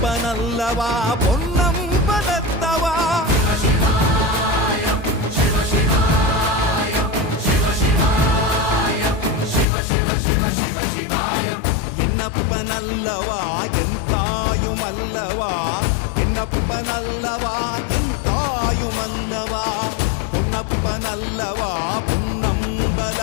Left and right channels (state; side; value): drops out; right; at 9.7 s